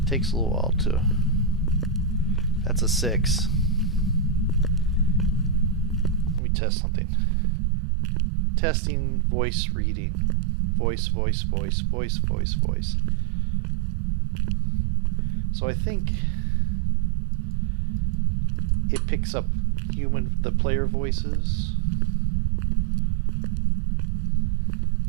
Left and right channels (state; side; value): drops out; left; at 6.4 s